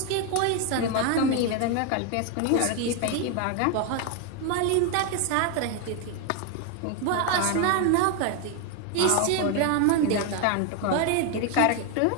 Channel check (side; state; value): both; different; correlation 0.01